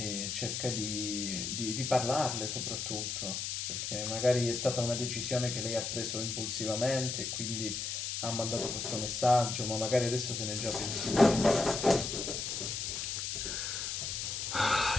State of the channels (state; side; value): noise; left; hiss, 3 dB below the sound